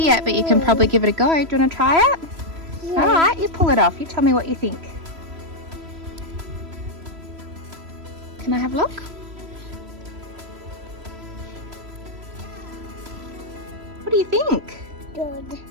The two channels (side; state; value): left; late; 3.0 ms